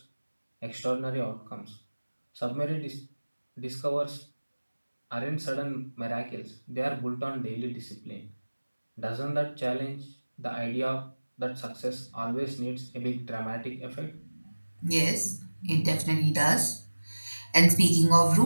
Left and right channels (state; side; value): inverted; both; correlation -1.00